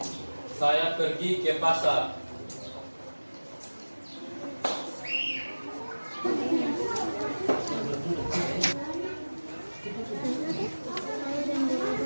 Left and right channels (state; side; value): inverted; both; correlation -1.00